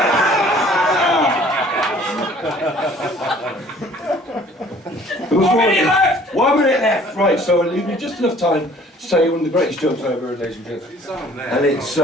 How many left? 1 minute left. Right, so it'll leave me just enough time to say one of the greatest jokes I've ever heard, ladies and gentlemen. And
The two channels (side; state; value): both; normal; correlation 0.54